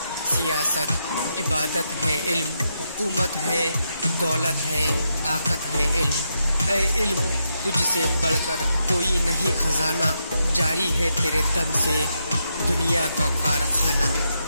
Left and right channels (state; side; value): inverted; both; correlation -0.82